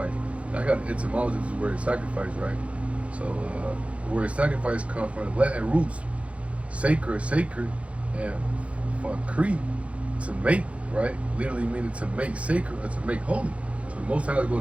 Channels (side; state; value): left; late; 0.063 ms